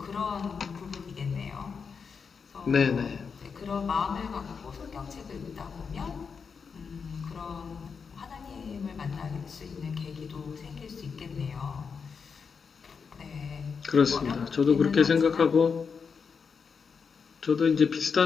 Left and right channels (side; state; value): right; quieter; 5.8 dB